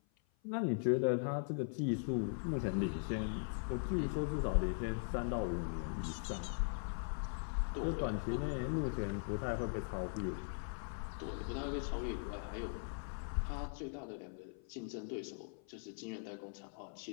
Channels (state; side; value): silent; right; 51 dB below the other